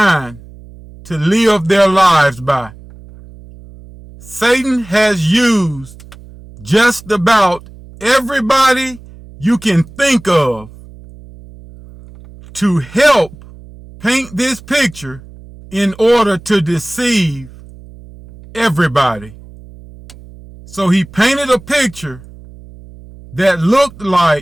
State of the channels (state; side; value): noise; right; hum, 20 dB below the sound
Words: to live their lives by. Satan has used just about everybody you can think of to help paint this picture in order to deceive everybody. So he painted a picture that looked